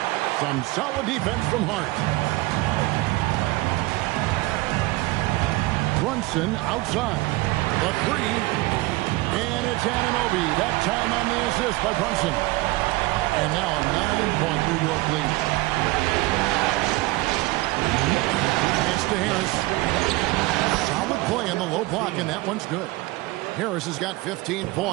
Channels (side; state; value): left; quieter; 20.7 dB